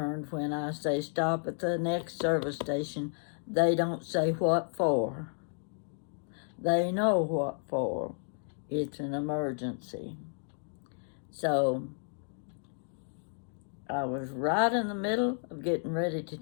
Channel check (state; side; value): silent; right; 56 dB below the other